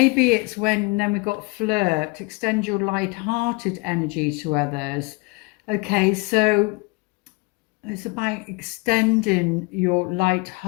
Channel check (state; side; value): quieter; right; 27.2 dB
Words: it's when, then we've got flirt, extend your light-hearted energy to others. Okay, so it's about extending your